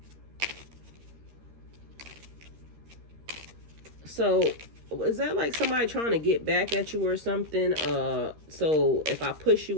So is that like somebody trying to get back at you or something? So if I push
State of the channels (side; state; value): left; late; 13 ms